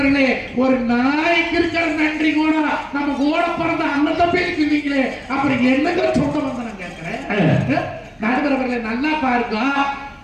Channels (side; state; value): both; identical; correlation 1.00